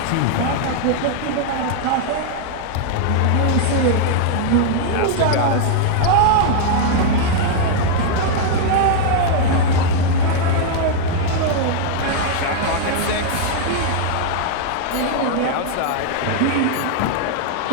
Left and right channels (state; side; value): different; both; correlation 0.00